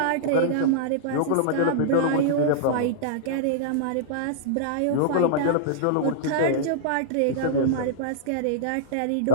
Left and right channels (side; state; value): both; different; correlation -0.03